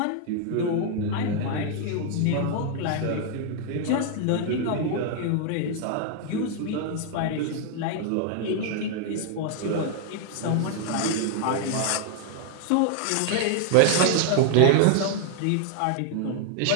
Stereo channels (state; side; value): different; both; correlation 0.00